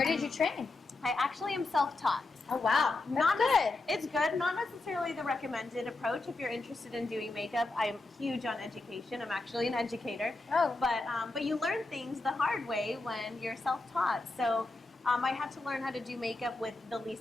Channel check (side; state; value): right; quieter; 3.1 dB